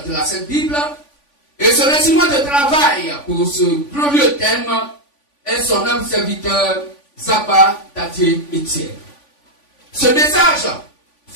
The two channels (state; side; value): late; right; 3.5 ms